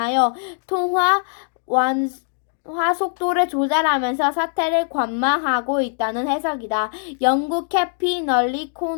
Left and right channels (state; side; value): silent; right; 65 dB below the other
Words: 통화 완화 속도를 조절하면서 사태를 관망하고 있다는 해석이다. 영국